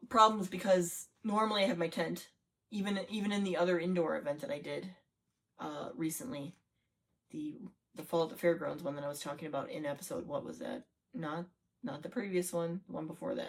problems, because normally I have my tent, even in the other indoor event that I did recently, the Fall at the Fairgrounds one that I was talking about in episode, what was that? Not the previous one, the one before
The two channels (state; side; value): identical; both; correlation 1.00